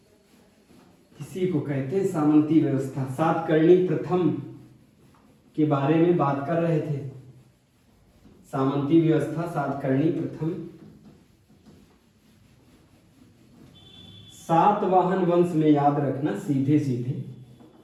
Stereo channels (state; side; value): identical; both; correlation 1.00